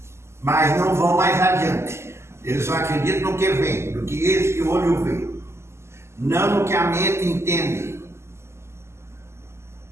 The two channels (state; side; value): late; left; 0.13 ms